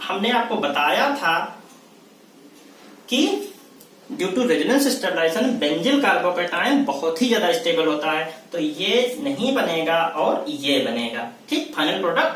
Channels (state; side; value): identical; both; correlation 1.00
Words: हमने आपको बताया था कि due to resonance stabilization benzyl carbocation बहुत ही ज्यादा स्टेबल होता है, तो ये नहीं बनेगा और ये बनेगा। ठीक, फाइनल